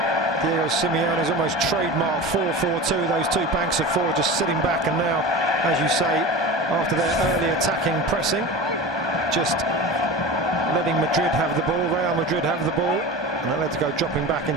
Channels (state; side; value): normal; both; correlation 0.31